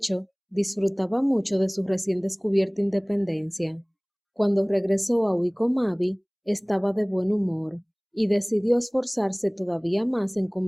disfrutaba mucho de su recién descubierta independencia. Cuando regresó a Wycombe Abbey, estaba de buen humor y decidió esforzarse todavía más en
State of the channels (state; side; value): identical; both; correlation 1.00